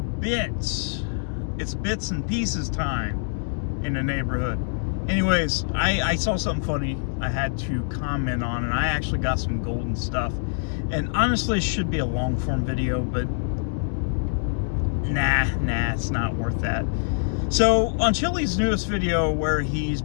It's bits and pieces time in the neighborhood. Anyways, I saw something funny I had to comment on, and I actually got some golden stuff. And honestly, it should be a long form video, but nah, it's not worth that. So on Chili's newest video where he's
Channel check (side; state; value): right; silent; digital silence